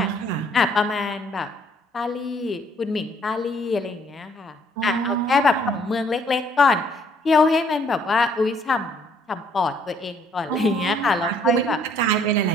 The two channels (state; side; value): normal; both; correlation 0.64